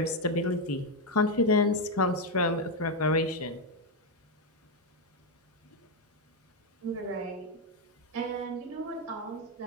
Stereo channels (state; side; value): normal; both; correlation 0.05